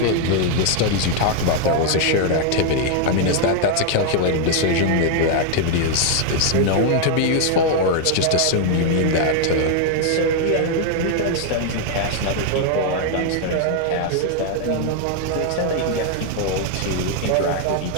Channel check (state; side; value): different; both; correlation 0.00